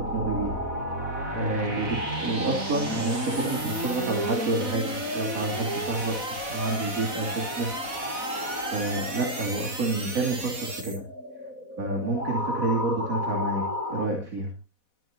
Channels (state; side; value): late; left; 4.1 ms